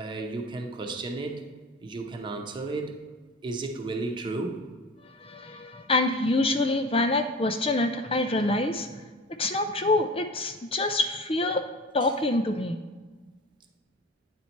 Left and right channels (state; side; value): normal; both; correlation 0.35